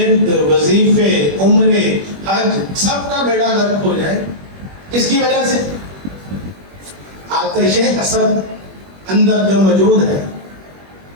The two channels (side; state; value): left; late; 21 ms